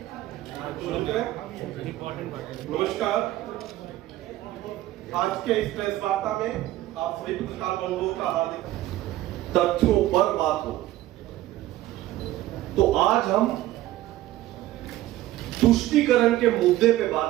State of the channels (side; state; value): left; quieter; 15.3 dB